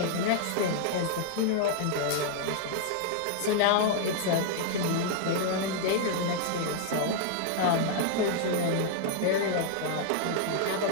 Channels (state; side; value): different; both; correlation -0.01